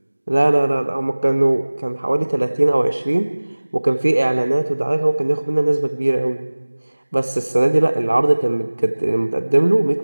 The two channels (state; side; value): inverted; both; correlation -1.00